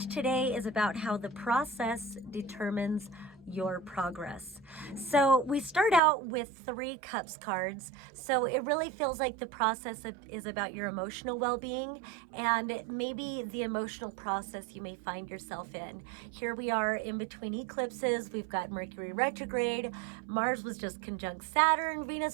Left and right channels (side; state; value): left; drops out; at 6.0 s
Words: today is about how the process determines your progress. So we start out with 3 cups cards. So it really feels like the process is about your emotional well-being and maybe the emotional process you may find yourself in. Here we are in between eclipses. We've got Mercury retrograde. Mars was just conjunct Saturn.